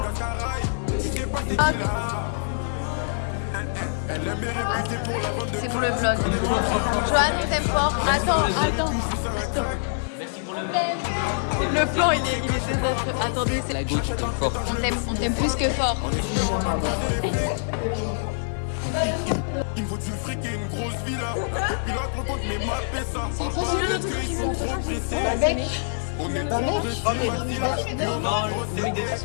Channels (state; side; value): silent; right; digital silence